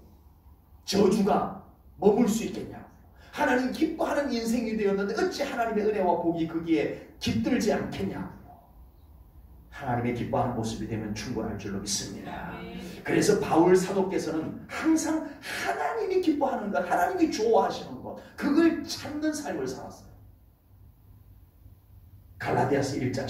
저주가 머물 수 있겠냐고. 하나님 기뻐하는 인생이 되었는데 어찌 하나님의 은혜와 복이 거기에 깃들지 않겠냐고. 하나님의 기뻐하는 모습이 되면 충분할 줄로 믿습니다. 그래서 바울 사도께서는 항상 하나님이 기뻐하는 것, 하나님이 좋아하시는 것, 그걸 찾는 삶을 살았어요. 갈라디아서 1장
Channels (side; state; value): both; identical; correlation 1.00